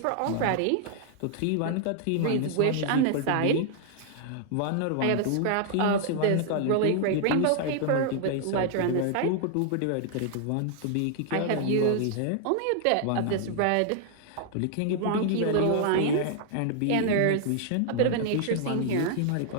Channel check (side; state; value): both; different; correlation 0.00